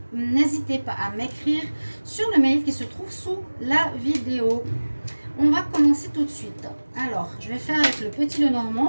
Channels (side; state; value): both; inverted; correlation -1.00